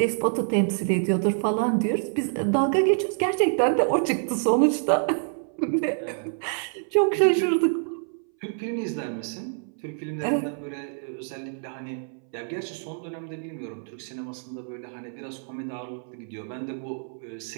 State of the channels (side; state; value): left; silent; 60 dB below the other